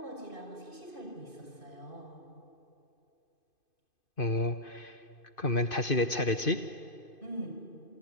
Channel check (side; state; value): right; late; 2.5 ms